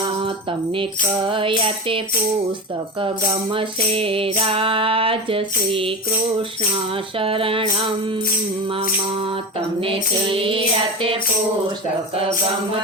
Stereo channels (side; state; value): both; normal; correlation 0.24